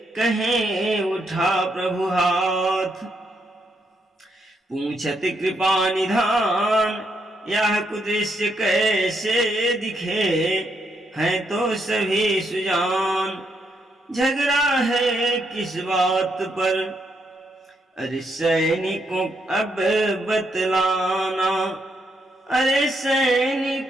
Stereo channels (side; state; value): both; normal; correlation 0.78